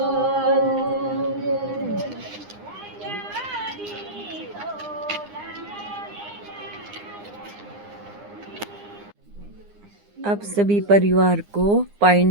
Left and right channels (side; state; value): left; late; 9.8 ms